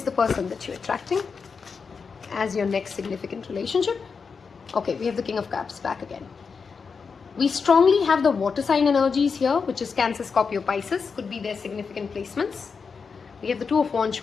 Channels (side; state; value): right; quieter; 5.4 dB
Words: the person that you're attracting as your next significant relationship? Okay, we have the King of Cups back again. We strongly have the water sign energies here, which is Cancer, Scorpio, Pisces. Could be their significant placements. We have the 2 of Wands